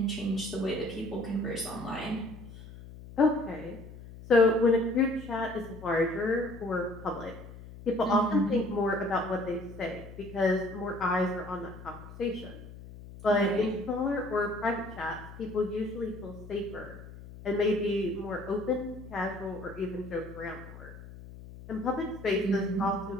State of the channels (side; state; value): left; noise; hum, 15 dB below the sound